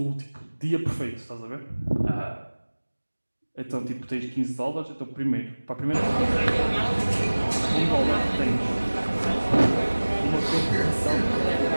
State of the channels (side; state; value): both; inverted; correlation -1.00